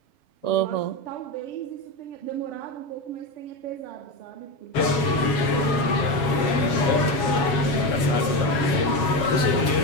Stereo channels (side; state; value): right; late; 7.2 ms